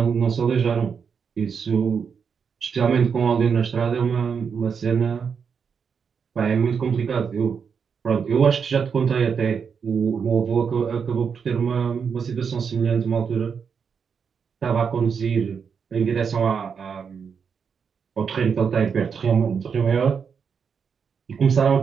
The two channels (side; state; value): left; quieter; 6.4 dB